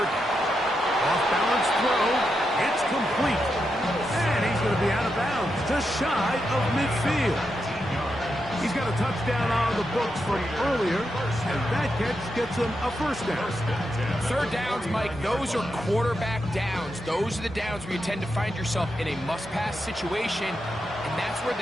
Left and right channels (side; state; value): both; normal; correlation 0.85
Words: down. Off-balance throw. It's complete. And he's going to be out of bounds, just shy of midfield. He's got a touchdown on the books from earlier, and that catch gets him a first down. Third downs, Mike, those are quarterback downs. Those are the downs where you tend to find yourself in a must-pass situation, and that's where